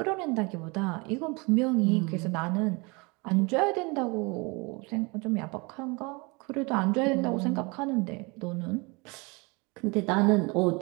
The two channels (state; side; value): quieter; left; 28.3 dB